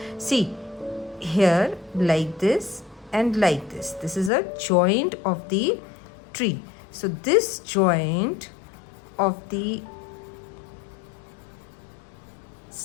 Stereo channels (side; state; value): right; drops out; at 4.3 s